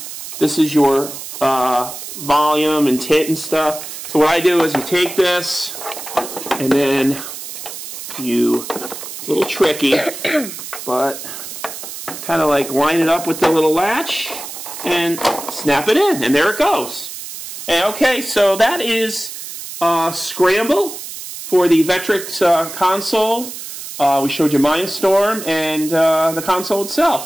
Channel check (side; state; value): right; noise; hiss, 10 dB below the sound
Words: this is your volume and tit and stuff. So what I do is you take this, and then you, it's a little tricky, but kind of like line it up with the little latch and snap it in, and there it goes. And okay, so that is Scramble for the Vectrex console. We showed you MineStorm and the console